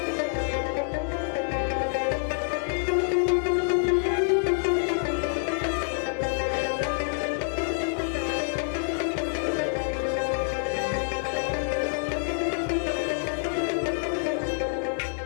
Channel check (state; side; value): silent; right; 60 dB below the other